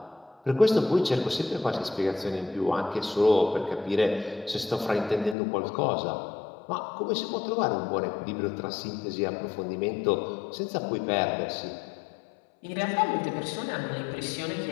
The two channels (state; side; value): drops out; right; at 5.4 s